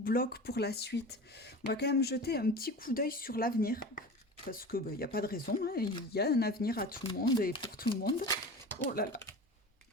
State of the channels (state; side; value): normal; both; correlation 0.33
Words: pour la suite. On va quand même jeter un petit coup d'œil sur l'avenir, parce que il n'y a pas de raison, hein, il y a un avenir à tout le monde et pour tout le monde. Oh là là.